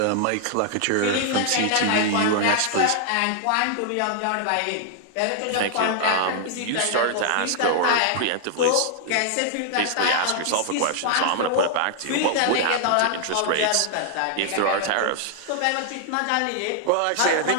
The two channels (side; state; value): both; different; correlation 0.00